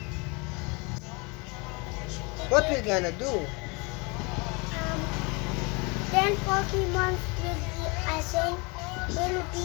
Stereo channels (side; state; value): right; quieter; 29.1 dB